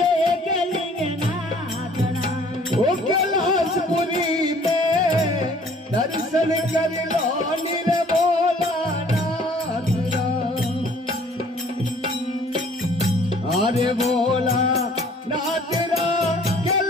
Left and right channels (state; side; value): normal; both; correlation 0.56